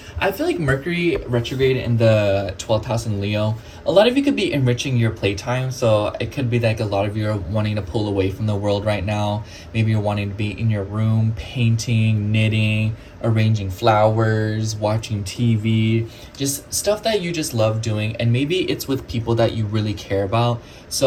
I feel like Mercury retrograde in the 12th house in Leo, a lot of you could be enriching your playtime. So it could be like a lot of you are wanting to pull away from the world right now. Maybe you're wanting to be in your room, painting, knitting, arranging flowers, watching TV, just stuff that you just love doing. And maybe it's with people that you really care about.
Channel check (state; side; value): identical; both; correlation 1.00